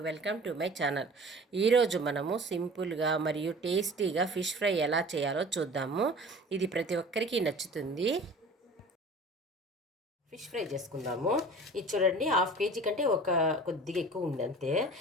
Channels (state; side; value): normal; both; correlation 0.42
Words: Welcome to my channel. ఈరోజు మనము సింపుల్గా మరియు టేస్టీగా ఫిష్ ఫ్రై ఎలా చేయాలో చూద్దాము. ఇది ప్రతి ఒక్కరికి నచ్చుతుంది. ఫిష్ ఫ్రై చేసుకుందాము. ఇది చూడండి, హాఫ్ కేజీ కంటే ఒక కొద్దిగా ఎక్కువ ఉంది అంతే.